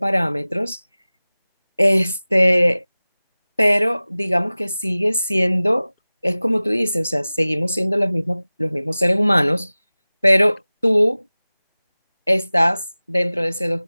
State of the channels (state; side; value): inverted; both; correlation -0.98